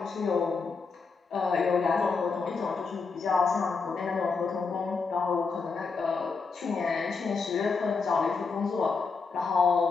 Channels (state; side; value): quieter; right; 4.8 dB